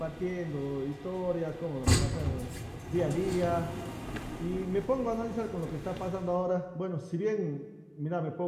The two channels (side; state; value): both; identical; correlation 1.00